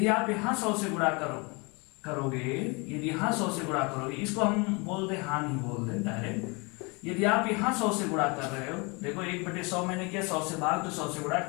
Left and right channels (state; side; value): quieter; right; 29.3 dB